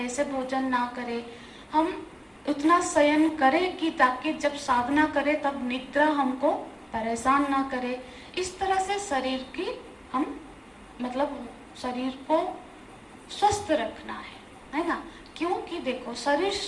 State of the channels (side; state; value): both; identical; correlation 1.00